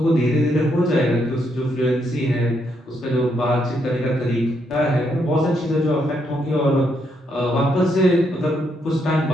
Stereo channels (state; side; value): normal; both; correlation 0.76